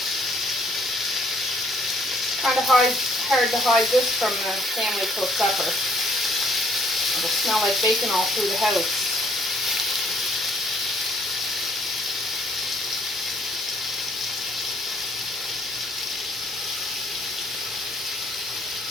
Kind of hard to hide this from the family till supper. It'll smell like bacon all through the house.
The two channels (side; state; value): both; normal; correlation 0.62